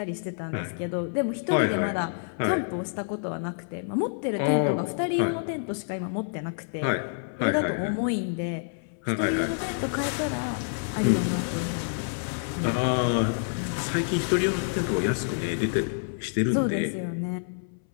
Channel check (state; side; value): silent; right; 60 dB below the other